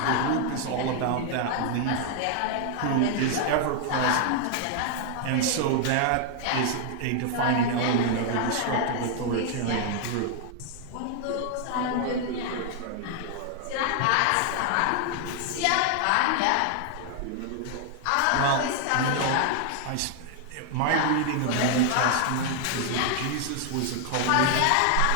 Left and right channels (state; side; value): different; both; correlation 0.00